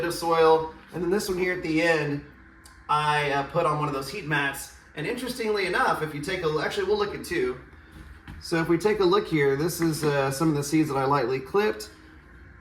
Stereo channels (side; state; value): both; identical; correlation 1.00